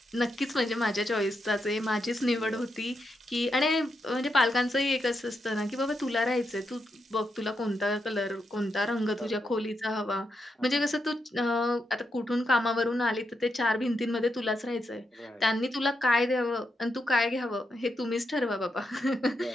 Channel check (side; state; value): both; normal; correlation 0.83